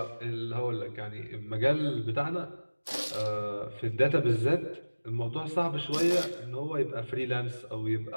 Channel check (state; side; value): inverted; both; correlation -1.00